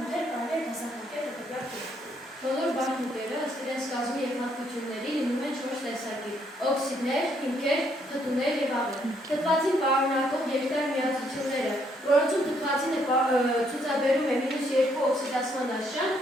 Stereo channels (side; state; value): both; normal; correlation 0.71